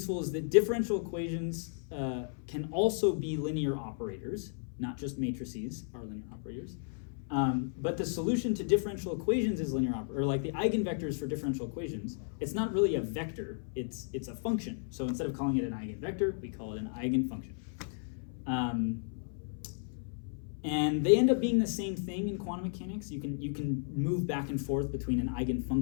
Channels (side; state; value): right; silent; 55 dB below the other